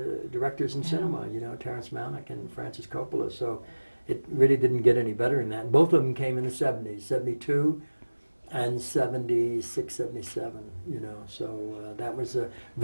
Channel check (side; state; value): both; inverted; correlation -1.00